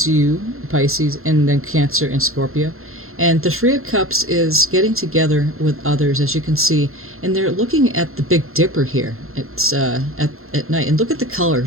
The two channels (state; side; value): late; left; 0.62 ms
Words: and then Cancer and Scorpio. And the Three of Cups is getting together with others, as you can see. And they're looking at the Big Dipper here. It's at night. And look at the